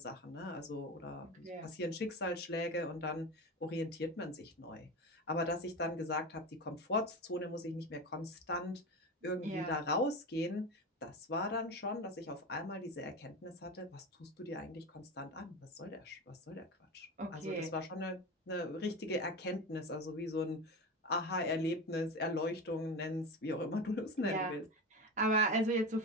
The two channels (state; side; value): normal; both; correlation 0.24